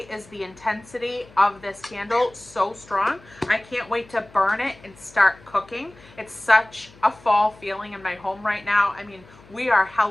is the intensity of this candle so strong. I can't wait to burn it and start cooking. It's such a fall feeling in my home right now. I mean, we are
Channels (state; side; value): noise; left; hum, 24 dB below the sound